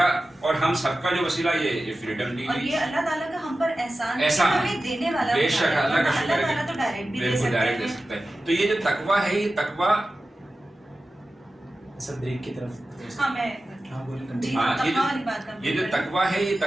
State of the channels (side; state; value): both; normal; correlation 0.95